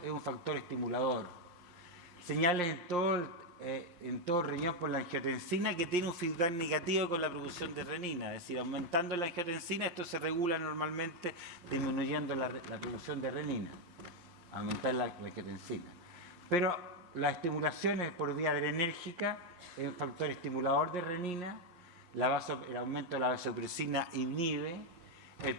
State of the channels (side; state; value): left; late; 5.6 ms